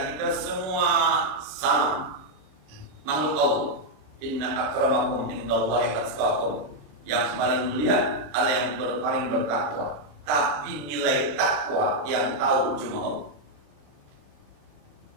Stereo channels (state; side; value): late; left; 26 ms